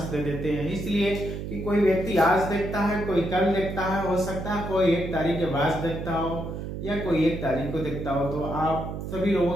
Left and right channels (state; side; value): noise; right; hum, 6 dB below the sound